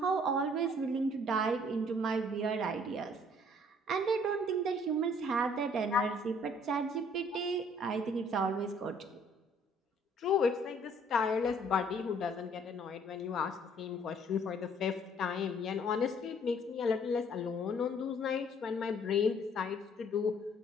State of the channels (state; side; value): normal; both; correlation 0.59